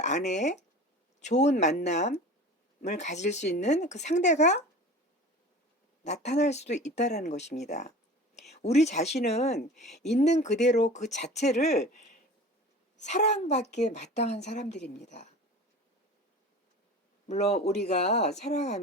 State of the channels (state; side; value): normal; both; correlation 0.38